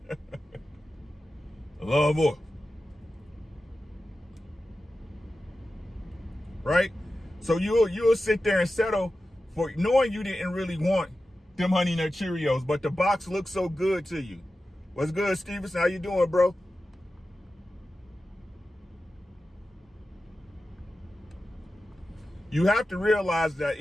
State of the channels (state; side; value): normal; both; correlation 0.93